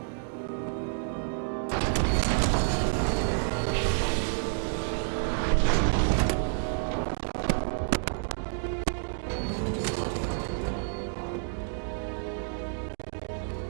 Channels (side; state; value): left; silent; digital silence